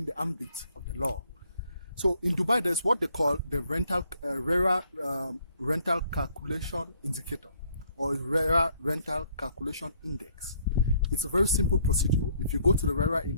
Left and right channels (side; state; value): both; inverted; correlation -0.66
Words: the ambit of the law? So in Dubai, there's what they call the RERA rental calculation indicator, or RERA rental calculation index. It's a very simple procedure. If you go to the RERA